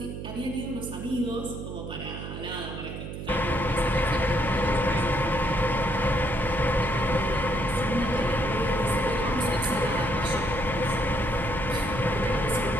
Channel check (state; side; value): noise; right; hum, 8 dB below the sound